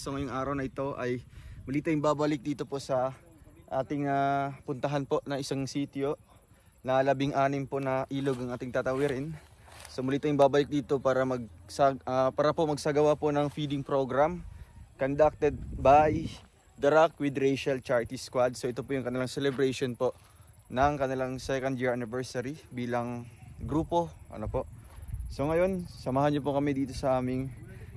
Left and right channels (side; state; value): both; identical; correlation 1.00